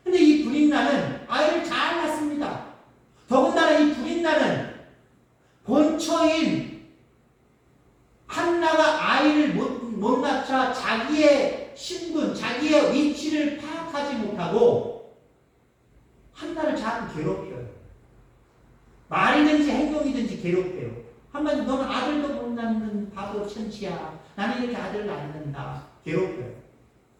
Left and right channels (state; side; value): identical; both; correlation 1.00